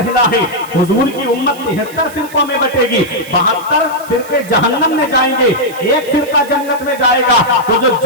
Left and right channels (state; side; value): noise; right; hiss, 19 dB below the sound